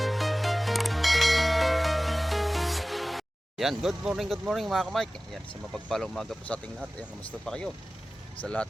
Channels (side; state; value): both; normal; correlation 0.97